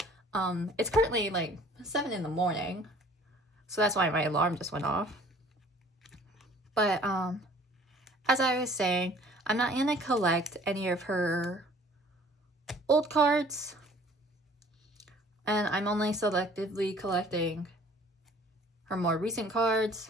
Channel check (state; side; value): normal; both; correlation 0.52